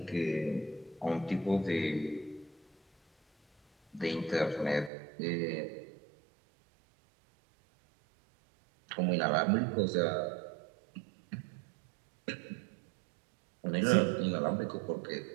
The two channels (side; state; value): left; drops out; at 4.9 s